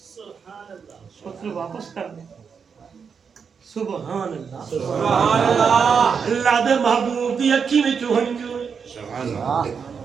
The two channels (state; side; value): quieter; left; 6.2 dB